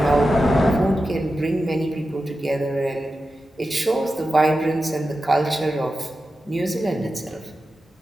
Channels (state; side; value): normal; both; correlation 0.92